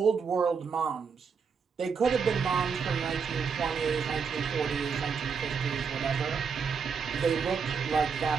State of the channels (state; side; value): quieter; left; 5.9 dB